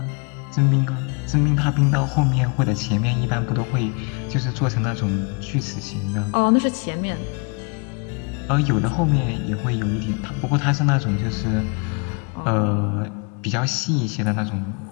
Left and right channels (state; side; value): quieter; right; 33.9 dB